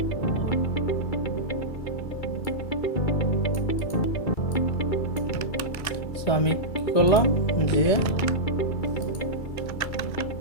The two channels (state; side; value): late; right; 2.3 ms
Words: সো আমি কী করলাম, যে